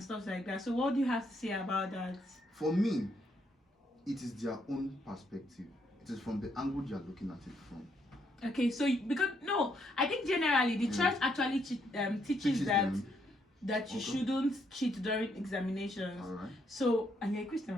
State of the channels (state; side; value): normal; both; correlation 0.74